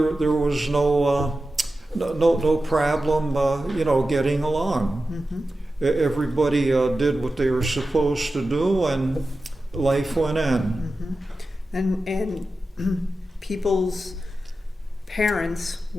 was no problem, getting along. Mm-hmm. Everybody did what they were supposed to do, and life went on. Mm-hmm. And people's parents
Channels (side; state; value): both; normal; correlation 0.93